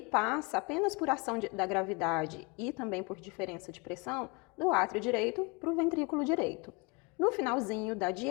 passa apenas por ação da gravidade e também por diferença de pressão do átrio direito para o ventrículo direito. No finalzinho da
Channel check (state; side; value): quieter; right; 29.0 dB